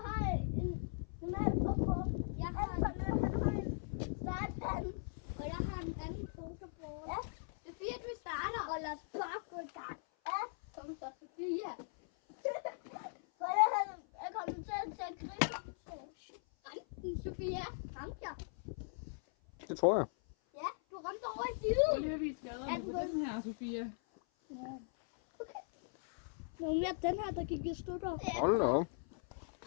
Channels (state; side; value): silent; right; 52 dB below the other